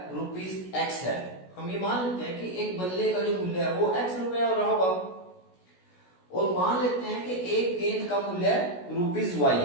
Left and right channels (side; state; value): right; late; 16 ms